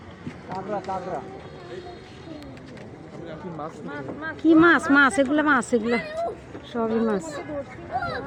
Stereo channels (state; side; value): identical; both; correlation 1.00